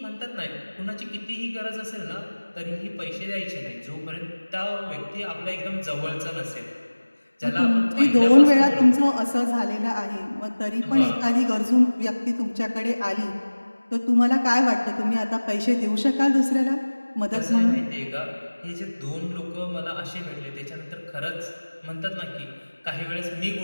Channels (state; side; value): inverted; both; correlation -1.00